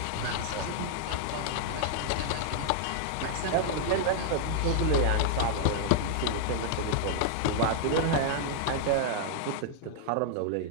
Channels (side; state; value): both; different; correlation -0.01